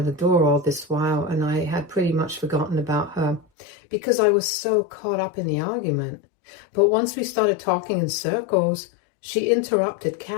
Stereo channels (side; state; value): right; drops out; at 3.5 s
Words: door all this while and I had pretty much forgotten about her because I was so caught up in the argument. But once we started talking in circles, she interrupted